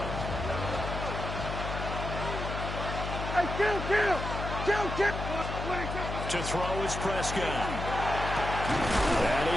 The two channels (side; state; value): left; noise; hum, 5 dB below the sound